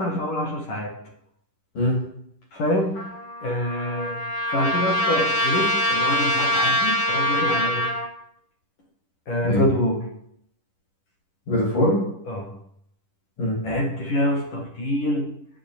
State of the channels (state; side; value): late; right; 10 ms